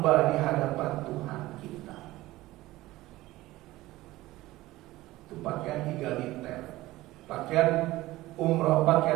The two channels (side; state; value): left; quieter; 17.7 dB